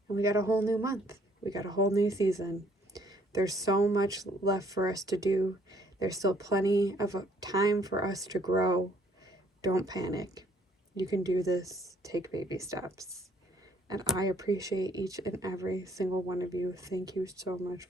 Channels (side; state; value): both; normal; correlation 0.63